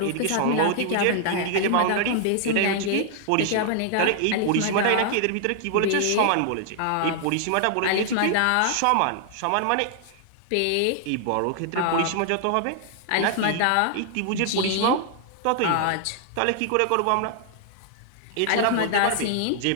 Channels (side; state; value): both; different; correlation 0.00